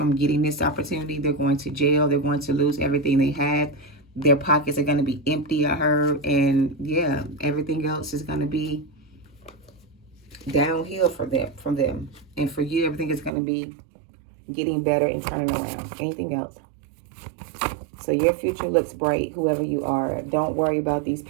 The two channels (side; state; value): left; drops out; at 13.3 s